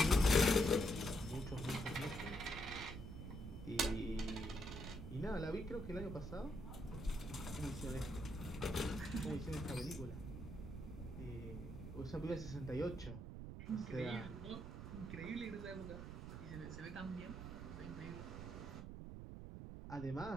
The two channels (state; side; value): noise; right; rumble, 8 dB below the sound